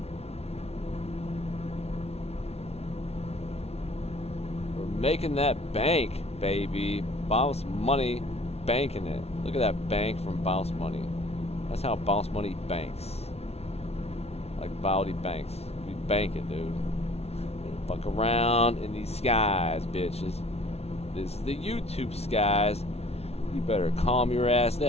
We're making that bank, baby. Boss Money banking it. Look at that bank from Boss Money. That's how Boss Money banks. Like Bowdy Banks. We bank it, dude. Fuck around in these skies, bitches. This is the YouTube skies. You better calm your ass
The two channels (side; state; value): right; late; 0.30 ms